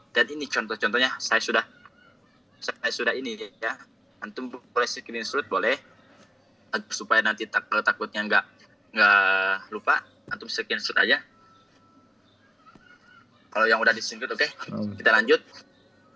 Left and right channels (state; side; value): normal; both; correlation 0.95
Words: Dan ini contoh-contohnya saya sudah ini ya. Antum boleh screenshot boleh supaya nanti takutnya nggak lupa, antum screenshot aja. Kalau yang udah di-screenshot oke. Kita lanjut.